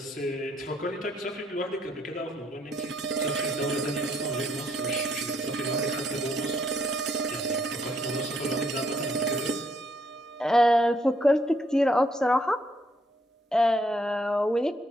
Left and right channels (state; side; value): normal; both; correlation 0.71